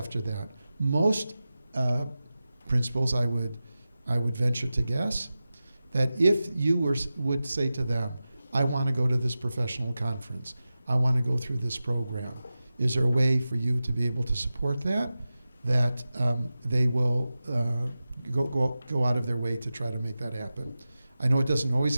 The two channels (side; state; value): both; inverted; correlation -0.94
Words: that. Most principals, I would venture to guess, that if you would say to them, I want to go to this professional conference, I want to go through this program, is there a way for you to be able to support that? That they will go out of their way to try to make that happen. I know it doesn't always